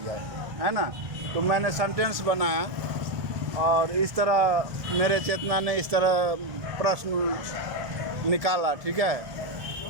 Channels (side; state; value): left; late; 1.7 ms